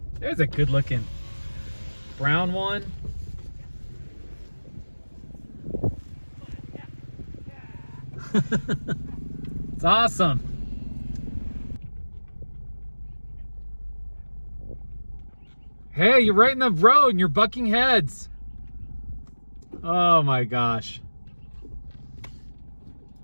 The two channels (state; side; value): inverted; both; correlation -1.00